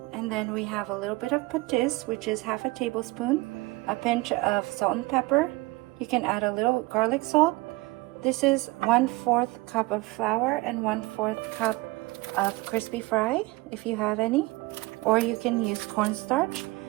And then we have a little bit of patis, which is half a tablespoon, a pinch of salt and pepper. You can add a little garlic salt. This is 1/4 cup of flour and 1/4 cup of crispy fry, if you have any, or you can use cornstarch.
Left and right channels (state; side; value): quieter; left; 21.9 dB